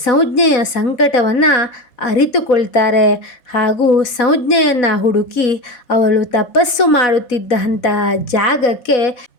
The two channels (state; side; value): late; right; 4.1 ms